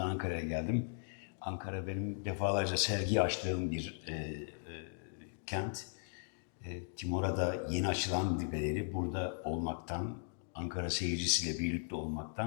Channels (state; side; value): silent; right; digital silence